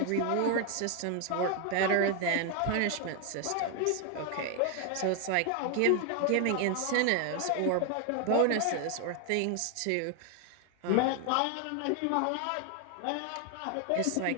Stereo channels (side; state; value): both; different; correlation 0.01